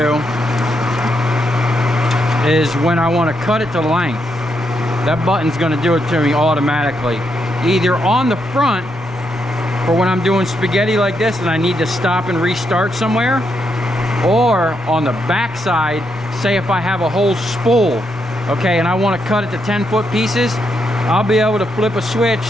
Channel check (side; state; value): right; noise; rumble, 27 dB below the sound